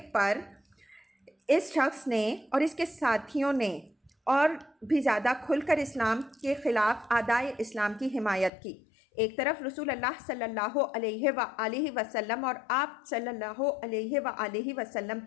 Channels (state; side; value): drops out; right; at 8.5 s